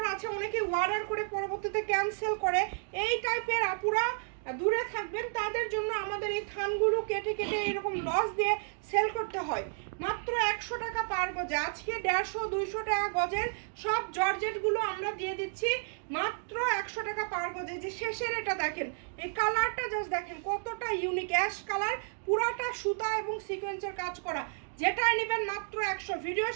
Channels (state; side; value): silent; left; 57 dB below the other